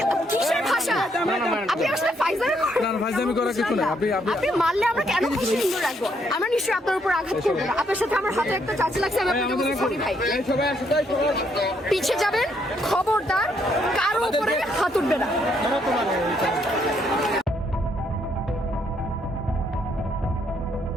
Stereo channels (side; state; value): both; normal; correlation 0.72